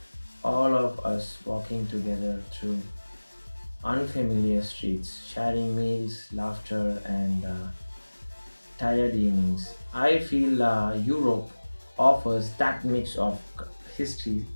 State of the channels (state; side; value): inverted; both; correlation -1.00